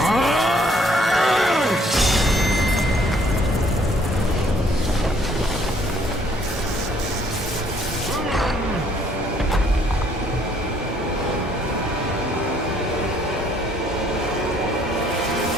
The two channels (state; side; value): normal; both; correlation 0.64